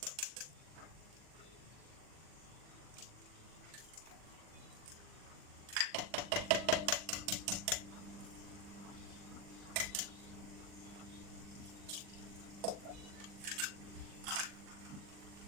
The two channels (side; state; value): left; late; 40 ms